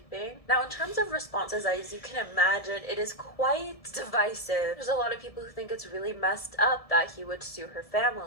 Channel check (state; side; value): late; right; 1.7 ms